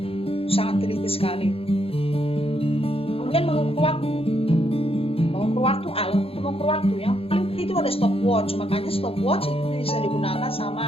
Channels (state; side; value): late; right; 0.27 ms